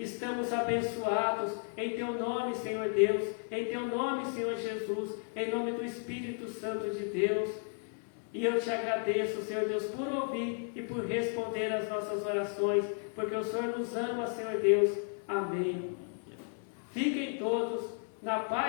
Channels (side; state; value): right; silent; 55 dB below the other